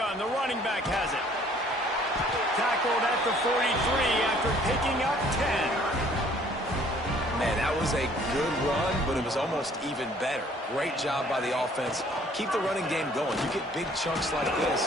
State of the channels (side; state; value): both; normal; correlation 0.57